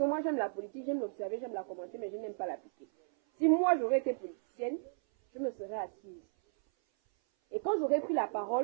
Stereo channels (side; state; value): left; silent; 55 dB below the other